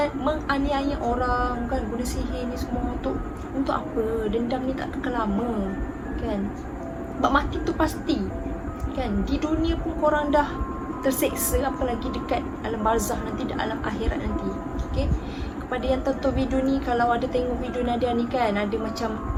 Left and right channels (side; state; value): both; identical; correlation 1.00